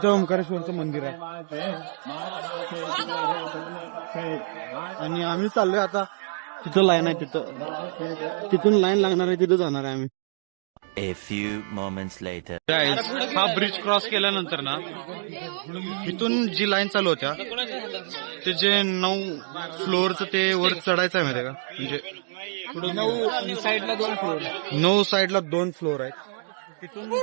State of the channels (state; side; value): silent; left; digital silence